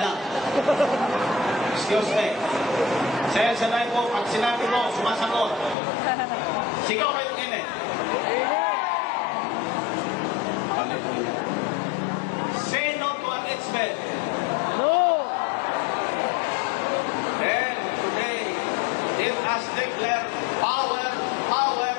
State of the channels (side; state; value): right; drops out; at 5.8 s